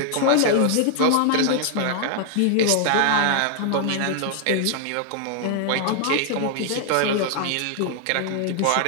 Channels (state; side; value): different; both; correlation 0.00